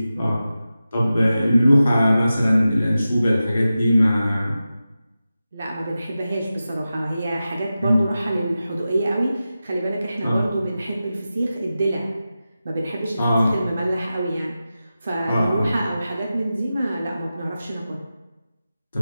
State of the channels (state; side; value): inverted; both; correlation -0.93